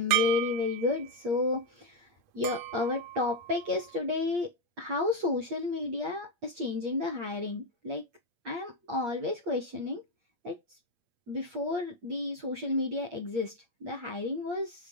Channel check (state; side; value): late; left; 8.5 ms